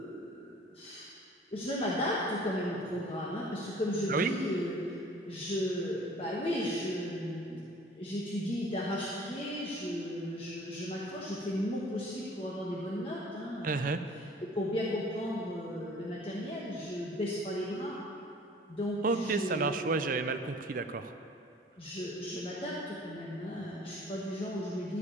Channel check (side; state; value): both; normal; correlation 0.50